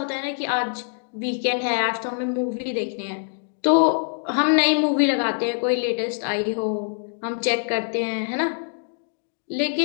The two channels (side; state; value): right; silent; 63 dB below the other